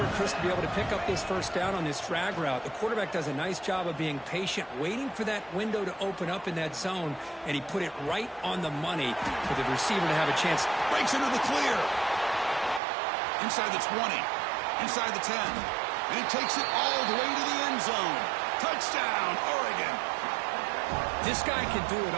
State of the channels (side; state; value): left; drops out; at 12.8 s